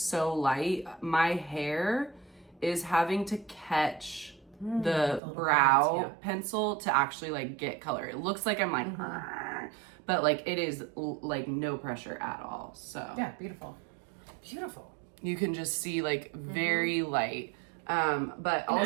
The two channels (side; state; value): left; drops out; at 5.2 s